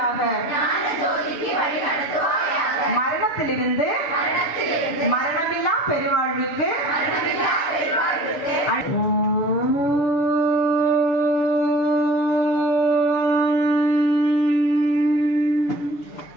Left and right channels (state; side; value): late; right; 6.8 ms